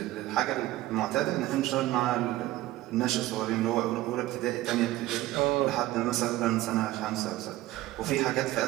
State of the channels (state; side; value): quieter; left; 16.3 dB